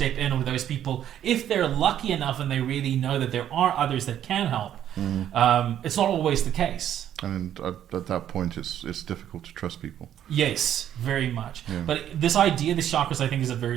in with those people if they're lucky enough and they really know that there are others that can help. It's not always the case. And at that point, it's difficult to trust people. Yes, very much. Yeah. But this idea, the chakras, I think is a very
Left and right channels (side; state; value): left; quieter; 10.6 dB